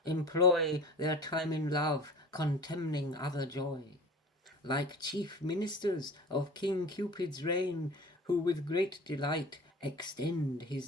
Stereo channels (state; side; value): normal; both; correlation 0.39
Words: employ their time in love, contemning other joy. Like chief ministers of King Cupid's reign, who with great delight extend his